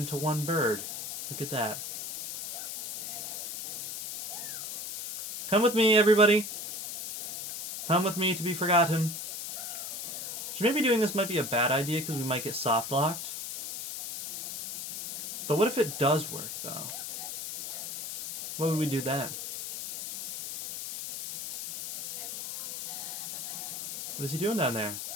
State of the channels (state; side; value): noise; left; hiss, 7 dB below the sound